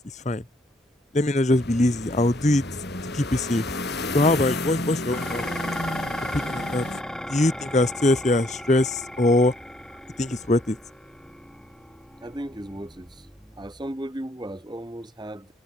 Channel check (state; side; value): normal; both; correlation 0.67